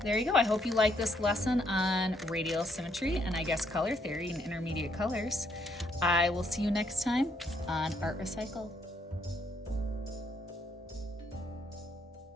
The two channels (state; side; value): normal; both; correlation 0.72